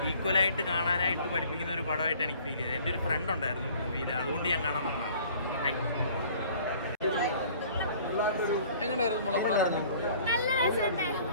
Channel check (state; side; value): inverted; both; correlation -0.52